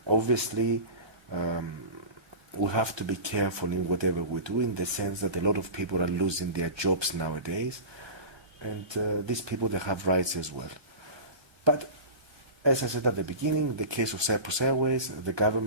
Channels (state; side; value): late; left; 1.2 ms